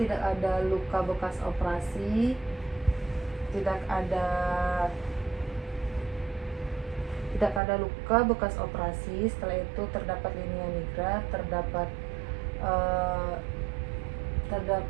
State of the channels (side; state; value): left; drops out; at 7.6 s